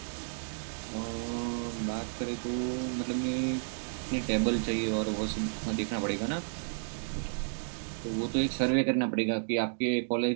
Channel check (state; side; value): silent; left; digital silence